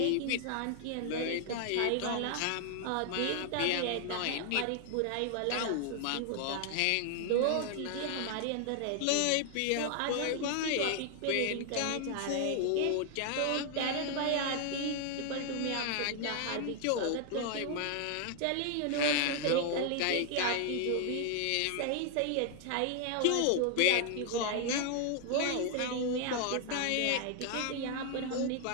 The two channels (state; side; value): different; both; correlation 0.00